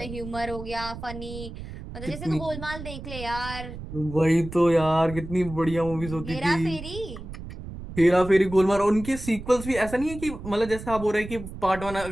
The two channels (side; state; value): right; noise; rumble, 11 dB below the sound